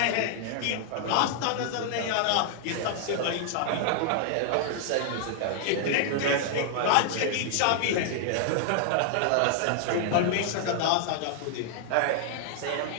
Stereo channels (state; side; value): different; both; correlation 0.00